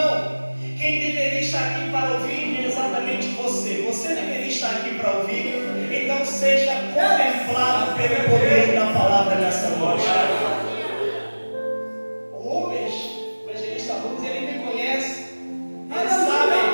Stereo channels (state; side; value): inverted; both; correlation -1.00